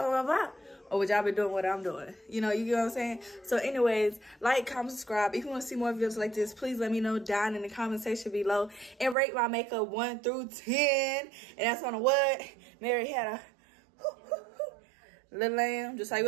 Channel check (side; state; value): left; drops out; at 9.2 s